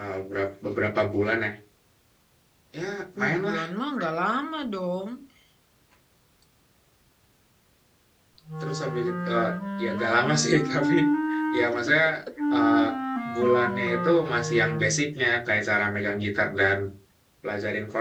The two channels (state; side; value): identical; both; correlation 1.00